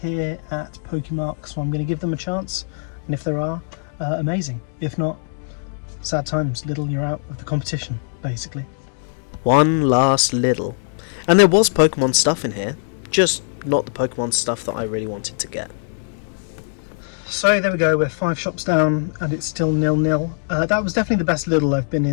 at PokeMark, so I'm going to give them a chance, and if there are, amazing. If not, sad times. Lidl, you're out of the competition, basically. One last Lidl. And there was Pokemon stuff in here, just not the Pokemon stuff that I really wanted to get. So there we go, we're 5 shops down and it's still 0-0. That was definitely the best Lidl I've been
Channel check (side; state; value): right; silent; digital silence